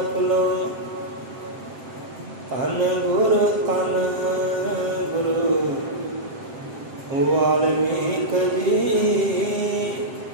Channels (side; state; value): left; late; 7.5 ms